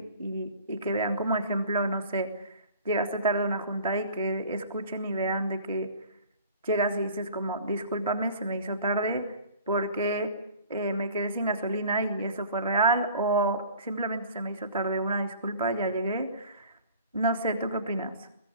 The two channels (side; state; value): both; inverted; correlation -0.47